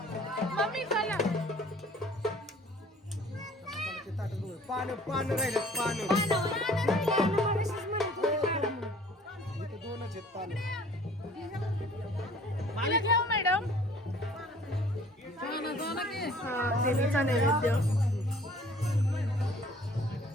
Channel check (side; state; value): both; normal; correlation 0.53